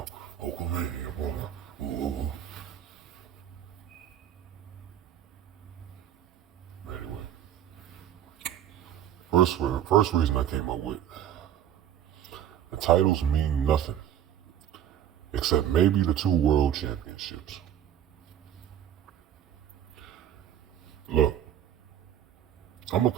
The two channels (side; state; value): left; quieter; 10.6 dB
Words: Hulkamania, brother. Ooh. Anyway. First reason I came up with. The titles mean nothing. Except maybe the 2 world championships. Look. I'm a